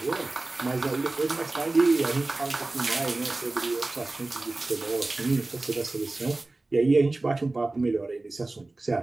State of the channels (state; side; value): quieter; left; 3.1 dB